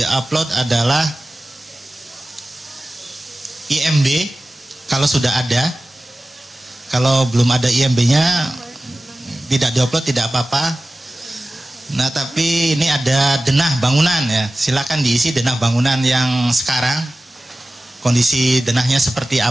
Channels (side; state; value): both; normal; correlation 0.96